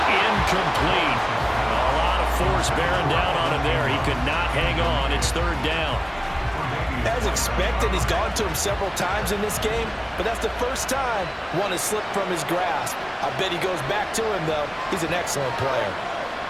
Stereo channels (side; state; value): both; identical; correlation 1.00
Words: A lot of force bearing down on him there. He could not hang on. It's 3rd down. As expected, he's gone to him several times in this game, but that's the first time one has slipped from his grasp. I bet he goes back to him, though. He's an excellent player.